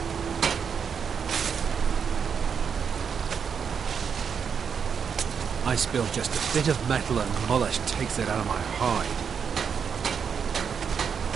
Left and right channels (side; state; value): left; quieter; 6.8 dB